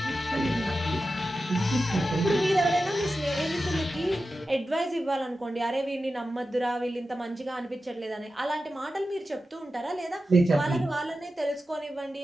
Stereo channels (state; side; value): normal; both; correlation 0.92